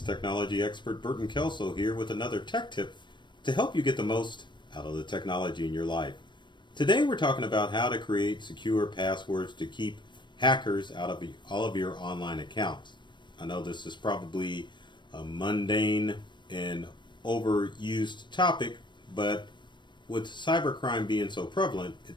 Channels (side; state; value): right; late; 0.22 ms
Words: technology expert Burton Kelso here with another tech tip to help you get the most out of the technology in your life. Today we're talking about how to create secure passwords to keep hackers out of all of your online accounts. I know this is probably a mundane and overused topic, but with cybercrime being so prevalent,